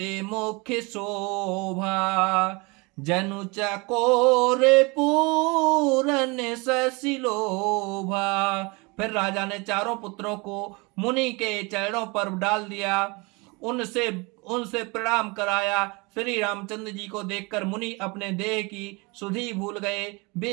मुख शोभा, जनु चकोर पूरन ससिलोभा। फिर राजा ने चारों पुत्रों को मुनि के चरणों पर डाल दिया, उनसे उनसे प्रणाम कराया। श्री रामचंद्र जी को देखकर मुनि अपने देह की सुधि भूल गए।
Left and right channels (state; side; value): quieter; left; 27.5 dB